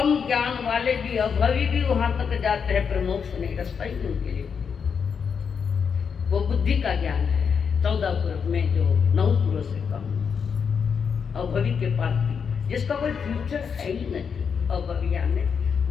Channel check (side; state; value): right; quieter; 6.5 dB